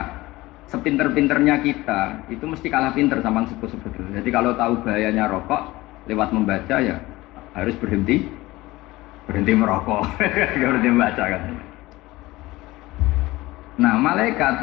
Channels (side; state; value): right; quieter; 19.3 dB